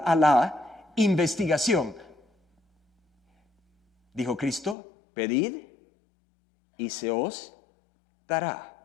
a la investigación. Dijo Cristo, pedid y se os dará.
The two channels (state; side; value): drops out; right; at 4.8 s